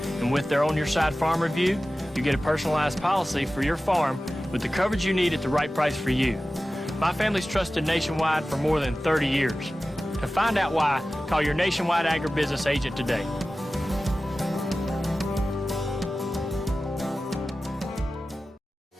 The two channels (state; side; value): normal; both; correlation 0.95